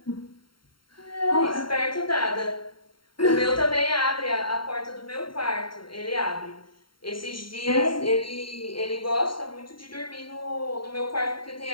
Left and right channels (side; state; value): right; late; 0.73 ms